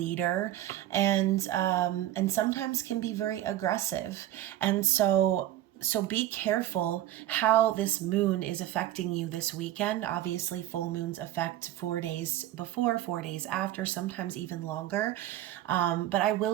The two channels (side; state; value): left; quieter; 13.4 dB